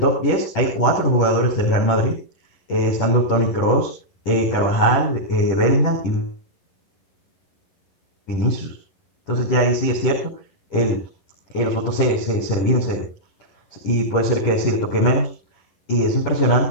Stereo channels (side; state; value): right; late; 10 ms